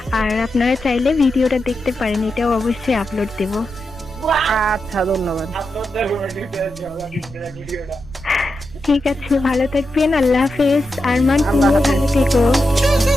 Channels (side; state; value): right; noise; rumble, 16 dB below the sound